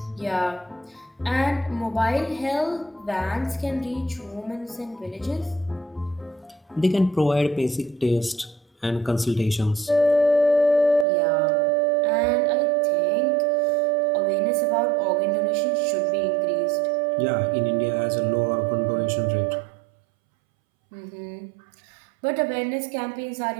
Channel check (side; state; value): left; drops out; at 11.1 s